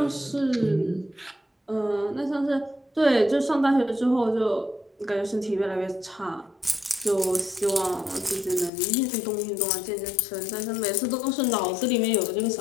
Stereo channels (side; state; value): right; drops out; at 8.7 s